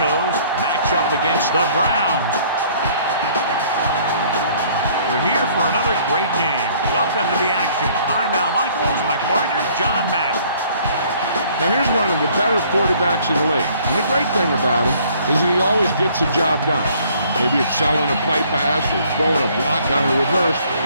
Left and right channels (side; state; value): both; inverted; correlation -0.58